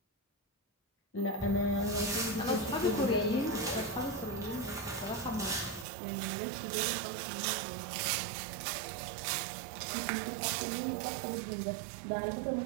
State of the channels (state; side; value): drops out; left; at 5.9 s